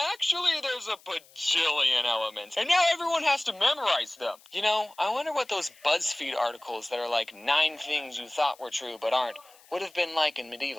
actually there's a bajillion elements, and now everyone has to memorize them. You know, I wonder what those BuzzFeed articles that are like 9 things you thought were true but aren't would have been like in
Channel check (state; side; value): noise; left; hiss, 26 dB below the sound